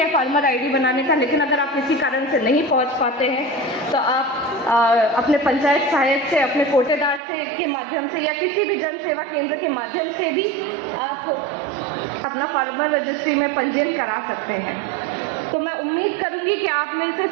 फार्मर आईडी बनाने का। लेकिन अगर आप किसी कारण से नहीं पहुंच पाते हैं तो आप अपने पंचायत सहायक से, अपने कोटेदार से के माध्यम से, या किसी भी जन सेवा केंद्र के माध्यम से भी आप अपना फार्मर रजिस्ट्री में पंजीयन करा सकते हैं। तो मैं उम्मीद करूंगी कि आप में से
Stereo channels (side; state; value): left; drops out; at 7.2 s